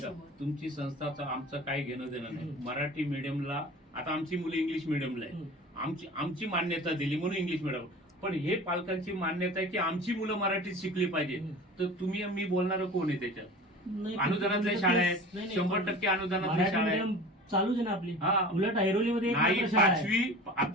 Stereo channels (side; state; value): both; normal; correlation 0.38